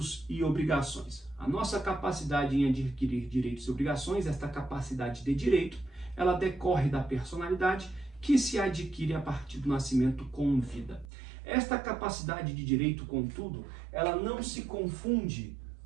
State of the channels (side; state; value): left; drops out; at 11.1 s